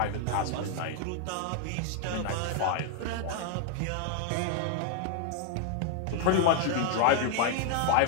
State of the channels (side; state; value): both; different; correlation 0.00